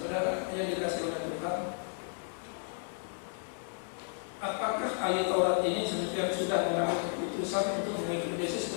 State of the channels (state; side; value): silent; right; 56 dB below the other